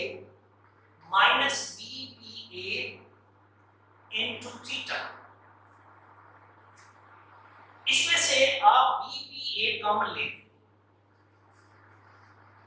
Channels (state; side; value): identical; both; correlation 1.00